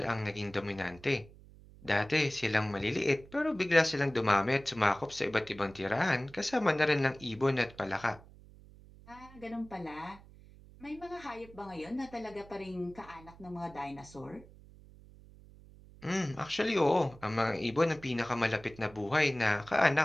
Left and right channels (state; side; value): noise; right; hum, 21 dB below the sound